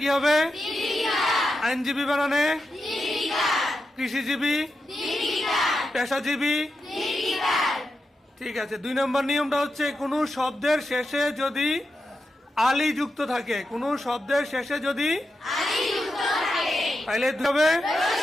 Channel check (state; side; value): normal; both; correlation 0.88